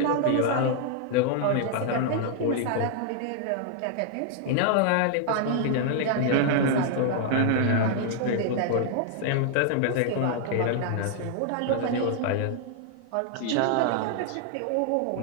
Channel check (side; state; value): both; different; correlation 0.00